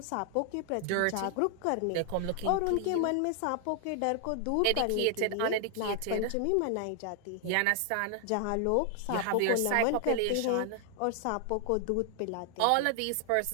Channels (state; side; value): different; both; correlation 0.00